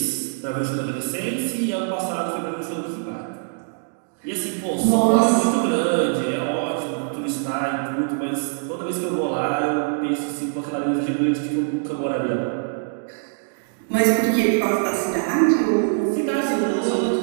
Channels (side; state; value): left; silent; digital silence